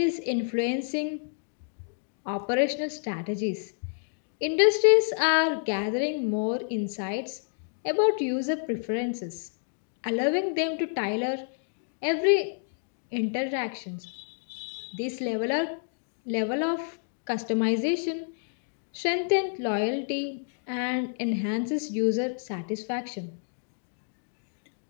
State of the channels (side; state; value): right; silent; digital silence